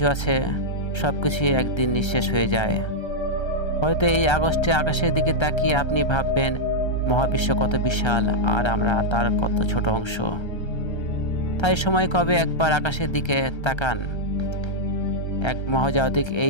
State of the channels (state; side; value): late; right; 1.3 ms